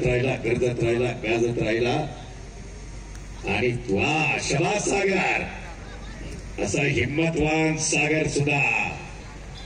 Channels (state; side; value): identical; both; correlation 1.00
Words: राहिला, गर्दत राहिला, गाजत राहिला. आणि वा, शबाज सागर, असा हिम्मतवान सागर सुद्धा